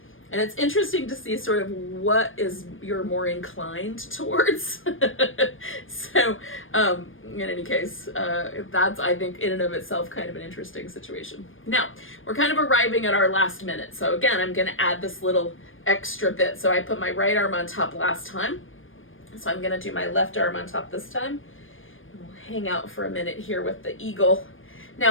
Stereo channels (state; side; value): late; right; 0.59 ms